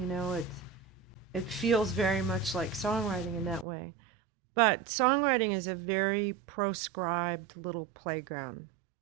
it feels very much like songwriting in that way. But songwriting is a very proscribed little playground.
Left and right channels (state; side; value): drops out; left; at 3.7 s